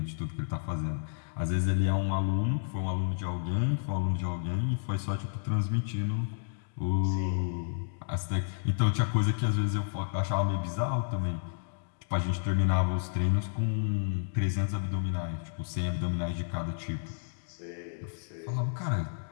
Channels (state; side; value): silent; right; digital silence